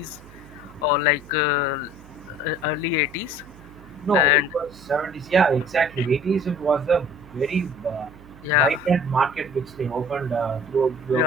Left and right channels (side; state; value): right; noise; hum, 21 dB below the sound